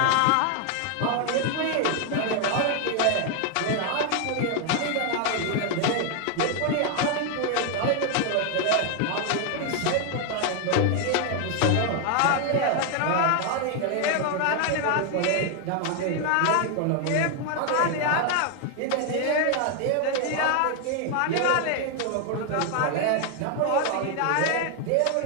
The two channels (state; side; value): different; both; correlation 0.00